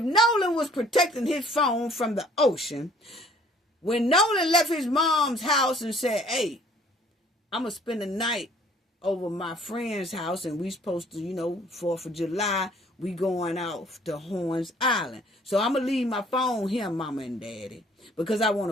Nolan was protecting his phone from the ocean, when Nolan left his mom's house and said, hey, I'm going to spend the night over my friend's house and we supposed to, 4th of July, we going out to Horns Island. So I'm going to leave my phone here, Mama and Daddy, because I want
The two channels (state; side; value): normal; both; correlation 0.57